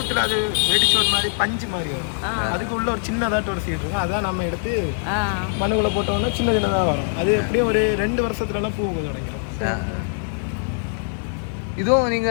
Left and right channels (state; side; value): silent; right; digital silence